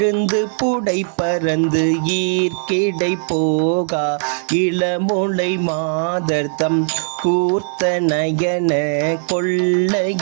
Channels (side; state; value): left; silent; digital silence